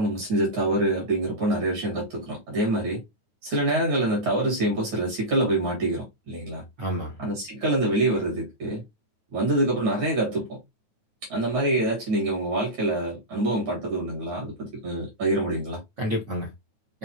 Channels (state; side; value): late; left; 9.5 ms